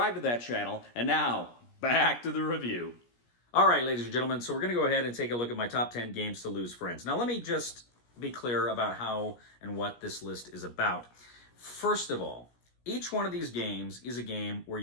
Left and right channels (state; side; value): late; right; 17 ms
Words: to that channel. And now, back to the review. All right, ladies and gentlemen, so we're going to go ahead and take a look at my top 10 games to lose friends. Now, let me just be clear about how and what this list is about. First of all, each one of these games is a game where